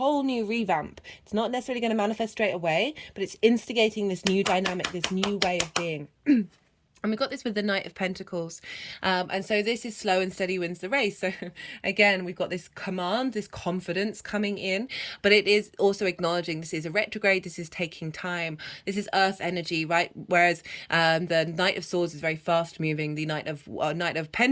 new revamp. It's not necessarily going to manifest straight away, but it's instigating this new dynamic, this new way of being. And we got this with the Knight of Pentacles. And so this is slow and steady wins the race. So again, we've got this command, this confidence coming in, but it is also acknowledging this is a retrograde. This is taking time. This is earth energy, right? Whereas the Knight of Swords is very fast moving. The Knight of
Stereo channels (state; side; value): identical; both; correlation 1.00